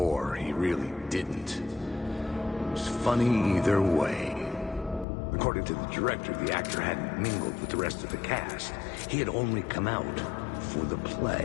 he really didn't. It was funny either way. According to the director, the actor hadn't mingled with the rest of the cast. He had only come out for the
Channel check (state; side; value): drops out; right; at 5.1 s